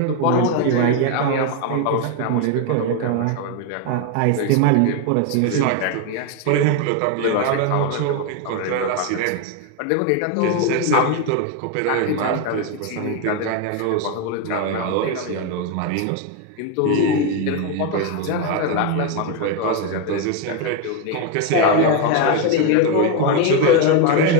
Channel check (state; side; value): different; both; correlation 0.02